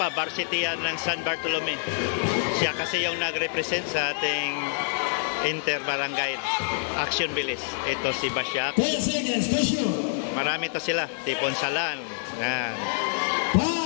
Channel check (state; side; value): silent; right; digital silence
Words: varsity yan ng San Bartolome. Siya kasi yung nag-represent sa ating inter-barangay action bilis. Ito si Basyak. Marami to sila. Tiponsalan. Yan.